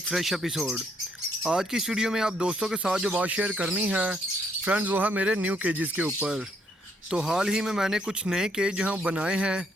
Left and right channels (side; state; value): both; normal; correlation 0.71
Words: फ़्रेश एपिसोड। आज की इस वीडियो में आप दोस्तों के साथ जो बात शेयर करनी है फ्रेंड्स, वो है मेरे न्यू केजेस के ऊपर। तो हाल ही में मैंने कुछ नए केज जो हैं बनाए हैं,